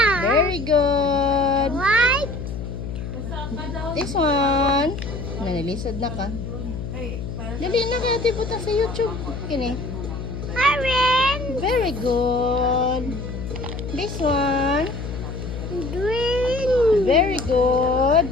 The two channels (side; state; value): left; noise; hum, 7 dB below the sound